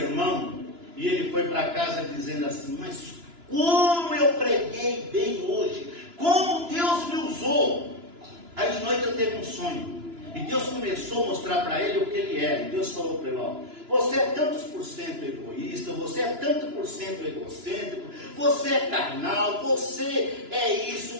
e ele foi para casa dizendo assim, mas como eu preguei bem hoje, como Deus me usou. Aí de noite ele teve um sonho, e Deus começou a mostrar para ele o que ele era, e Deus falou para ele, ó, você é tantos por cento egoísta, você é tanto por cento egocêntrico, você é carnal, você é isso,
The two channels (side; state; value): left; late; 2.9 ms